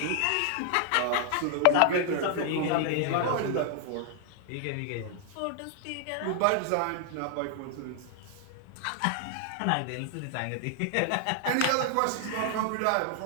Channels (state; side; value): different; both; correlation 0.00